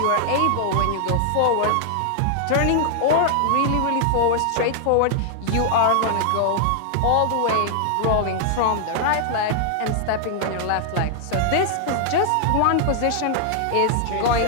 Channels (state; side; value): different; both; correlation -0.01